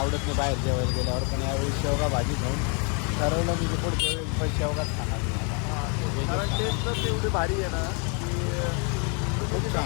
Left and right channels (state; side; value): quieter; right; 36.3 dB